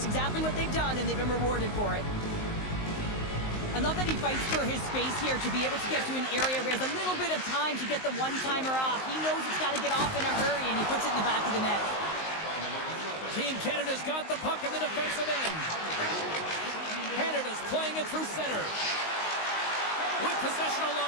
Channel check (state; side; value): late; right; 19 ms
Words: exactly what they've done, and they've been rewarded for it. I love that he fights for his space here to be able to get to an area where he has a little bit of time to get the one-timer off. He knows it's got to get off in a hurry, and he puts it in the back of the net. Team Canada's got the puck in the defensive end. Canada's playing it through center. With possession